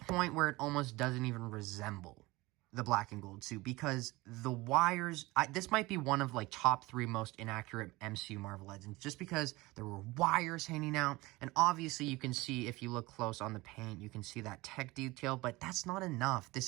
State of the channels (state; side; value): quieter; left; 21.2 dB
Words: where it almost doesn't even resemble the black and gold suit because the wires... this might be one of, like, top 3 most inaccurate MCU Marvel Legends just because there were wires hanging out. And obviously, you can see, if you look close on the paint, you can see that tech detail. But that's not enough. This